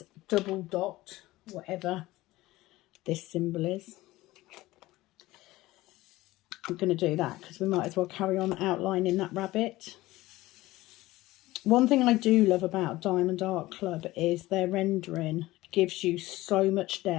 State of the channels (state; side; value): quieter; right; 18.0 dB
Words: double dot, whatever this symbol is. I'm going to do that because we might as well carry on outlining that rabbit. One thing I do love about Diamond Art Club is their rendering gives you so much